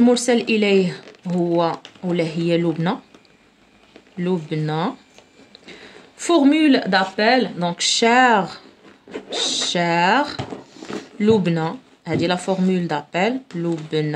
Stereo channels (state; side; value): identical; both; correlation 1.00